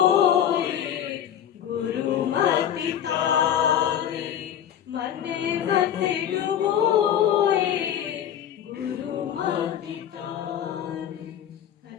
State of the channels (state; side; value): quieter; right; 10.0 dB